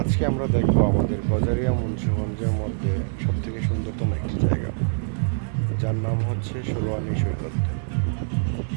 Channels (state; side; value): silent; left; digital silence